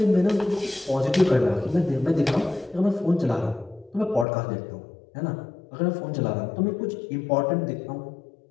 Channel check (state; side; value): drops out; right; at 4.2 s